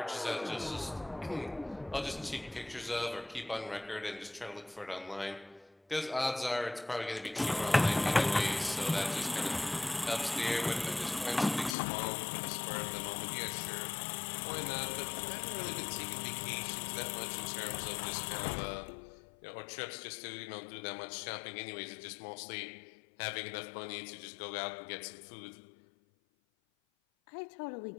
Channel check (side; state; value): right; drops out; at 11.8 s